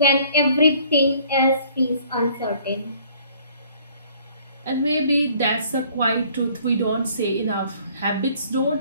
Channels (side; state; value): both; inverted; correlation -0.58